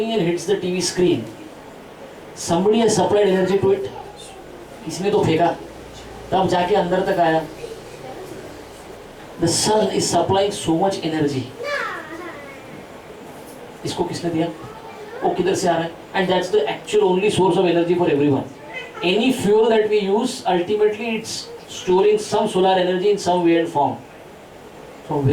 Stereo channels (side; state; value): both; identical; correlation 1.00